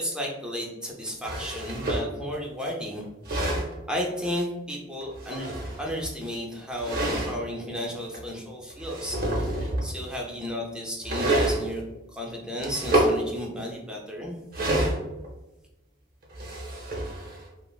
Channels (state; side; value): normal; both; correlation 0.38